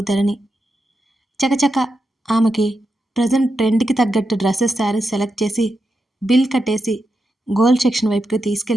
ధరణి. చకచక ఆమెకి ప్రజెంట్ ట్రెండ్కి తగ్గట్టు డ్రెస్సెస్ శారీస్ సెలెక్ట్ చేసి బిల్ కట్టేసి గోల్డ్ సెక్షన్ వైపుకి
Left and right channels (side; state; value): both; normal; correlation 0.87